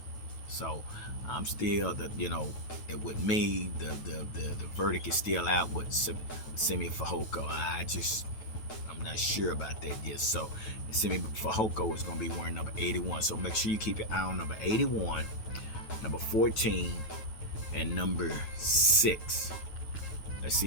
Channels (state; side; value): late; right; 9.2 ms